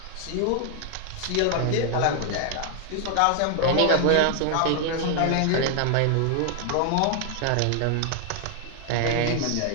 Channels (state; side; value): different; both; correlation 0.00